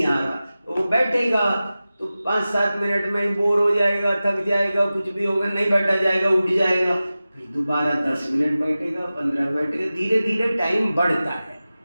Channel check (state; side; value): inverted; both; correlation -0.96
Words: आ रहा, तो वो बैठेगा तो 5-7 मिनट में ही बोर हो जाएगा, थक जाएगा, कुछ भी होगा, नहीं बैठा जाएगा, उठ जाएगा, फिर दोबारा 10 मिनट बैठेगा, 15 बैठेगा, धीरे धीरे टाइम बढ़ता है।